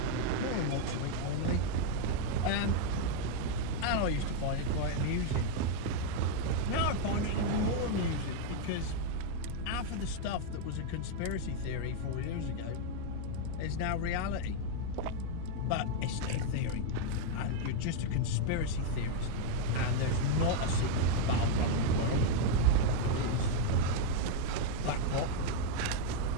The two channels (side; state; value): both; different; correlation 0.00